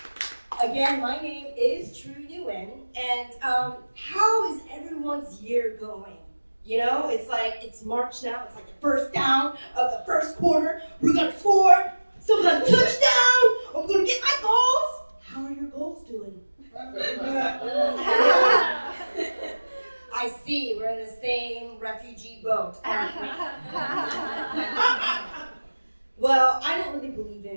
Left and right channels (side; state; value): both; inverted; correlation -1.00